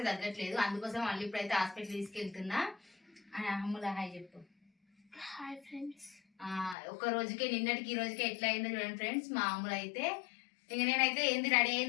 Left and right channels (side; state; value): right; drops out; at 6.8 s